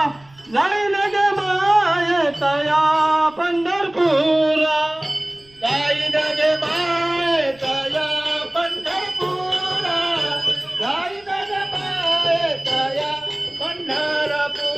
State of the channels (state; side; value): noise; right; rumble, 29 dB below the sound